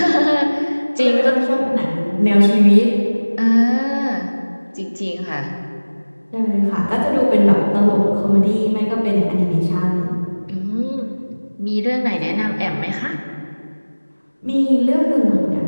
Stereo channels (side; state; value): both; inverted; correlation -1.00